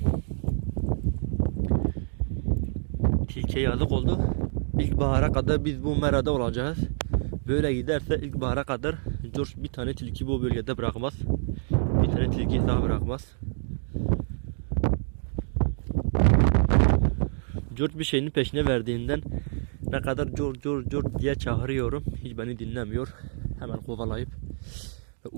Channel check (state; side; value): silent; left; digital silence